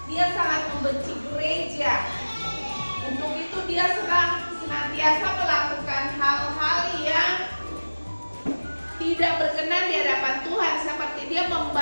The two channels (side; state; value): both; inverted; correlation -1.00